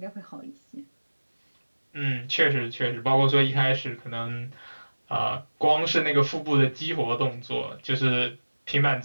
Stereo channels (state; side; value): inverted; both; correlation -1.00